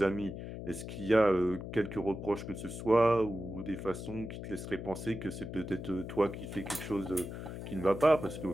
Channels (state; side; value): noise; left; hum, 8 dB below the sound